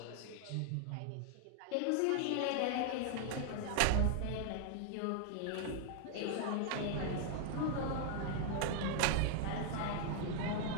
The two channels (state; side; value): different; both; correlation 0.00